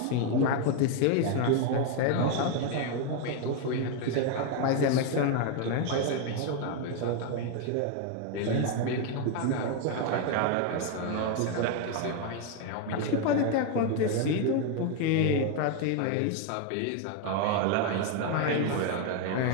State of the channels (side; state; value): both; different; correlation 0.01